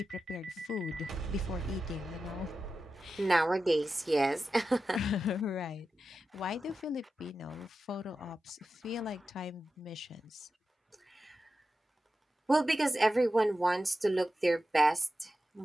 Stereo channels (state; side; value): normal; both; correlation 0.91